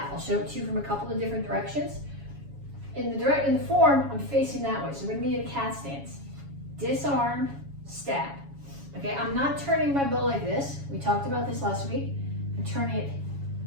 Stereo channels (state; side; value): late; left; 7.2 ms